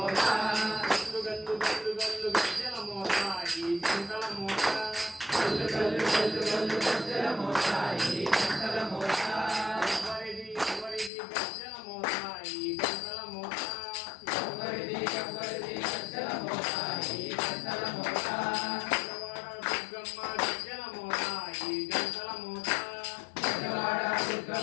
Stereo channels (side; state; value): right; drops out; at 11.1 s